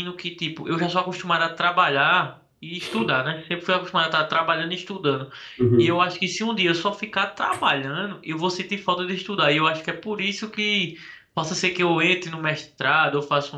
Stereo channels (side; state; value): both; identical; correlation 1.00